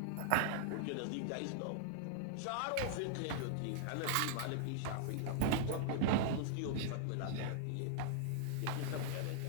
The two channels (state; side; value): different; both; correlation -0.01